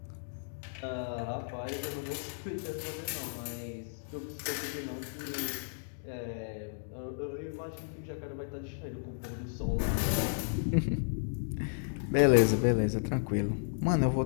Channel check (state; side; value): silent; right; digital silence